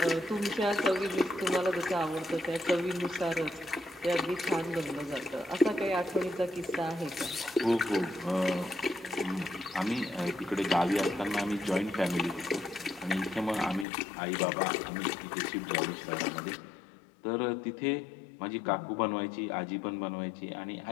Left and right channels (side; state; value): right; drops out; at 13.9 s